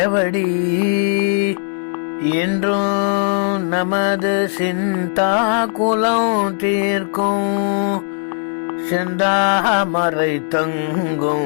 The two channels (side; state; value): right; silent; digital silence